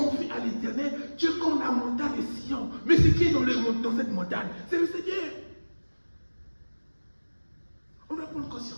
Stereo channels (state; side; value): inverted; both; correlation -1.00